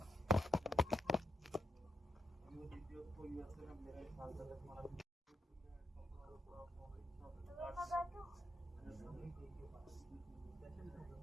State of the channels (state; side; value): normal; both; correlation 0.81